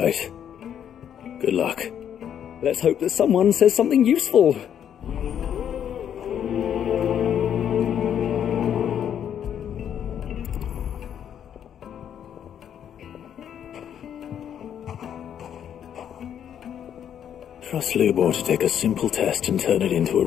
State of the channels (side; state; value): right; quieter; 9.2 dB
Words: Good luck. Let's hope that someone says something useful. Trust Lubor to take a simple test and turn it into a